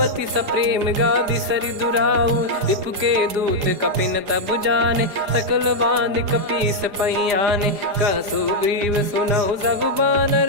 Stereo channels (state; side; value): late; left; 4.8 ms